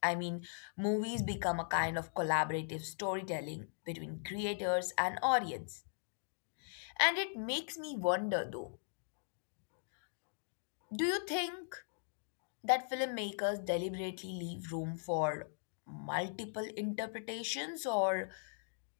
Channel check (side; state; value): right; silent; digital silence